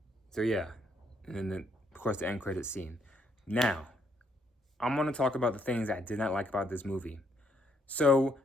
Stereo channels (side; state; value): both; normal; correlation 0.72